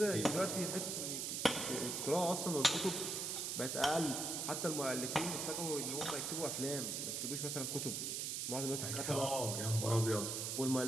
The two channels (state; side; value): noise; right; hiss, 2 dB below the sound